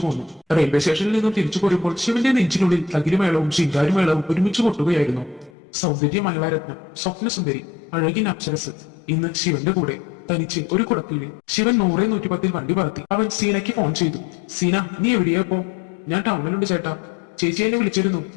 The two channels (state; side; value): drops out; right; at 5.5 s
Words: പോന്നു. റെയിൽവേ സ്റ്റേഷനിൽ നിന്നും തിരിച്ചു പോരുമ്പോൾ ശിവന്റെ നെഞ്ചിനുള്ളിൽ തകിലുമേളവും ശിങ്കാരിമേളവും ഒരുമിച്ച് കൊട്ടുകയായിരുന്നു. സൗന്ദര്യ മംഗളാരത്നം, സ്വപ്നസുന്ദരി, അഴകിൻ അപ്സരസ് ഇന്ന് ശിവന്റെ കൂടെ തനിച്ച് ഒരു കുടക്കീഴിൽ. ശിവൻ 100-110 വണ്ടി പറത്തി. അവൻ സീനയ്ക്ക് ഫോൺ ചെയ്തു. സീന, നീ എവിടെയാ ഇപ്പോ? ഞാൻ ടൗണിലുണ്ട് ചേട്ടാ. ചേച്ചി എന്നെ വിളിച്ചിരുന്നു.